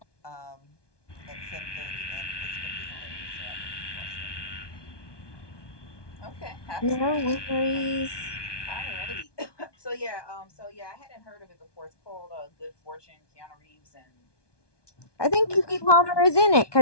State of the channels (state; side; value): late; right; 1.2 ms